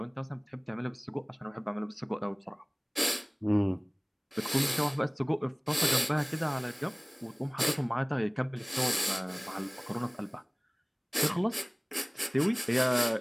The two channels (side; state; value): both; identical; correlation 1.00